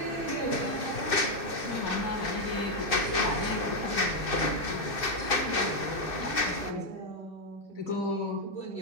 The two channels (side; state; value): right; late; 2.6 ms